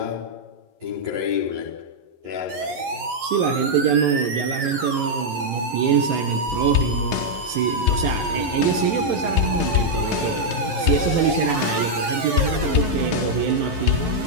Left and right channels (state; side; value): late; left; 11 ms